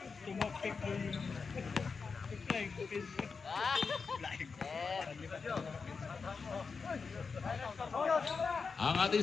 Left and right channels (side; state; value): right; quieter; 5.1 dB